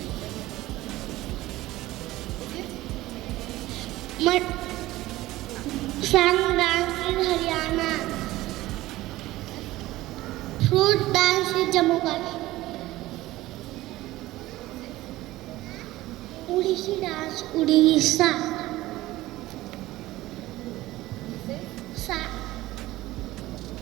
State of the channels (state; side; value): quieter; left; 17.2 dB